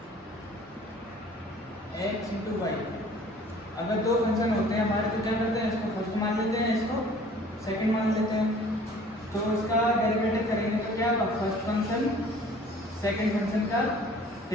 x इंटू वाई। अगर दो फंक्शन होते हैं हमारे तो क्या करते हैं, इसको फर्स्ट मान लेते हैं, इसको सेकंड मान लेते हैं। तो इसका डेरिवेटिव करेंगे तो क्या होगा, फर्स्ट फंक्शन सेकंड फंक्शन का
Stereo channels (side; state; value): both; normal; correlation 0.51